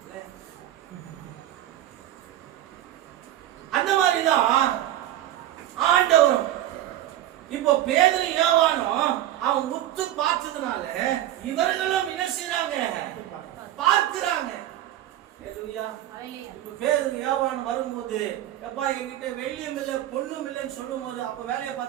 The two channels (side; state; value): left; quieter; 13.1 dB